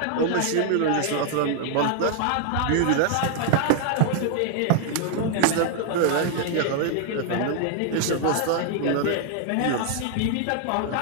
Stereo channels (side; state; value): both; different; correlation 0.00